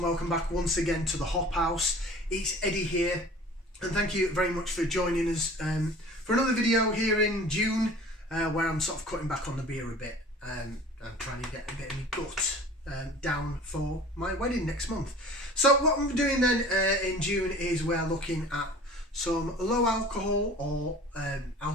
welcome back once again to the Hop House. It's Eddie here, and thank you very much for joining us for another video here in June, where I'm sort of cutting back on the beer a bit and trying to get a bit of my gut down for my wedding next month. So what I'm doing then in June is we're looking at some low alcohol or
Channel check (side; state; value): both; normal; correlation 0.43